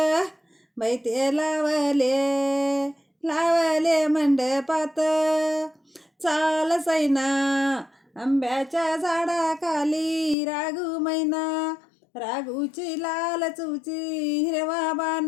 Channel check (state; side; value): drops out; right; at 10.4 s